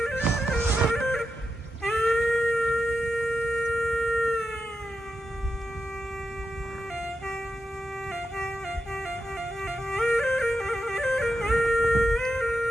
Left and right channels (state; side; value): normal; both; correlation 0.87